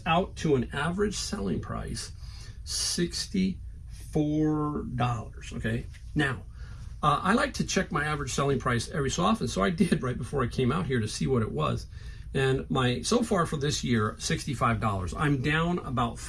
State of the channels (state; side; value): identical; both; correlation 1.00